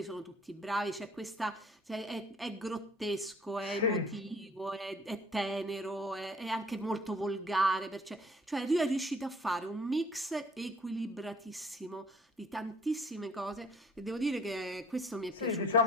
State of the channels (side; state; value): both; normal; correlation 0.55